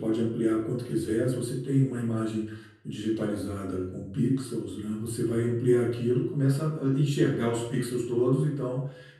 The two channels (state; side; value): identical; both; correlation 1.00